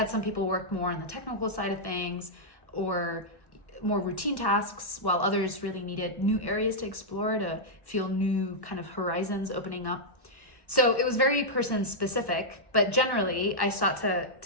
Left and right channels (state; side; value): late; right; 1.1 ms